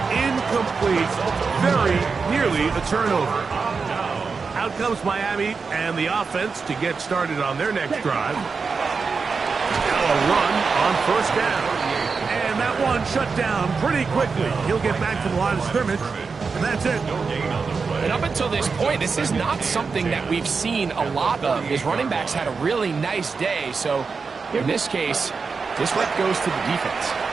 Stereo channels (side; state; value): left; quieter; 4.9 dB